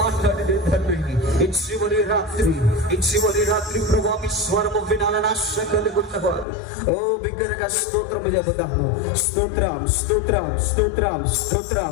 మాట్లాడండి తండ్రి. ఈ చివరి రాత్రి ప్రభువా మీ స్వరము వినాలని ఆశ కలుగుతున్నవారు ఓ బిగ్గరగా స్తోత్రము చెబుతాము. స్తోత్రం స్తోత్రం స్తోత్రం స్తోత్రం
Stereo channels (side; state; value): right; drops out; at 6.5 s